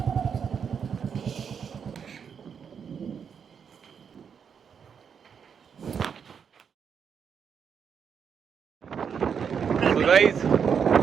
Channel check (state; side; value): quieter; left; 7.0 dB